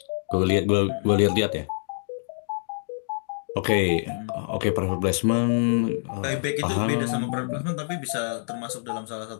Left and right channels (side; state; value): right; silent; digital silence